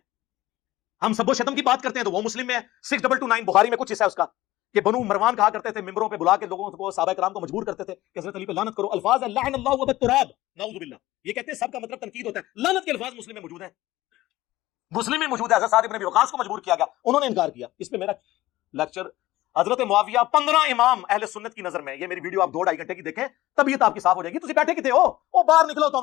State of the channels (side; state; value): right; quieter; 16.7 dB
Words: ہم سب و شتم کی بات کرتے ہیں تو وہ مسلم میں ہے. 6229 بخاری میں کچھ حصہ ہے اس کا کہ بنو مروان کہا کرتے تھے, ممبروں پہ بلا کے لوگوں کو, صحابہ کرام کو مجبور کرتے تھے کہ حضرت علی پہ لعنت کرو. الفاظ ہے لعن اللہ و بالتراب, نعوذ باللہ. یہ کہتے ہیں سب کا مطلب تنقید ہوتا ہے. لعنت کے الفاظ مسلم میں موجود ہیں, مسلم میں موجود ہے. حضرت سعد بن ابی وقاص کو مجبور کیا گیا, انہوں نے انکار کیا. اس پہ میرا لیکچر حضرت معاویہ 15 امام اہل سنت کی نظر میں, یہ میری ویڈیو آپ 2-2.5 گھنٹے کی دیکھیں, طبیعت آپ کی صاف ہو جائے گی. تسی بیٹھے کتے ہو, وہ باہر نکلو